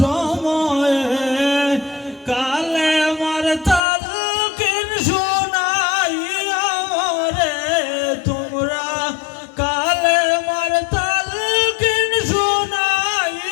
সময়ে কালে মার তালকিন শোনাই আমরে তোমরা কালে মার তালকিন শোনাই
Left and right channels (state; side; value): drops out; right; at 3.8 s